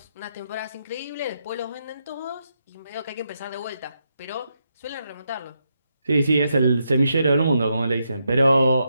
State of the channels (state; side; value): inverted; both; correlation -0.82